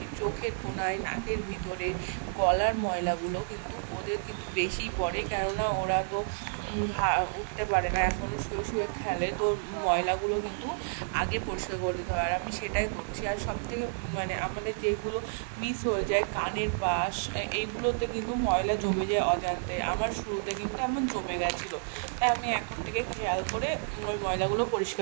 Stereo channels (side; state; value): left; silent; digital silence